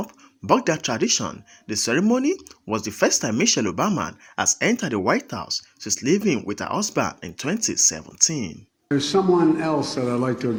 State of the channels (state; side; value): identical; both; correlation 1.00